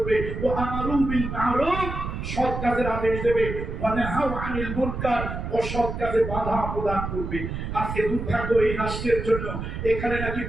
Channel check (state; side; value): noise; right; rumble, 5 dB below the sound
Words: ও আমারু বিল মারুফ, সৎ কাজের আদেশ দেবে, ওয়া নাহাউ আনিল মুনকার, অসৎ কাজে বাধা প্রদান করবে। আজকে দুর্ভাগ্য এই রাষ্ট্রের জন্য, এখানে নাকি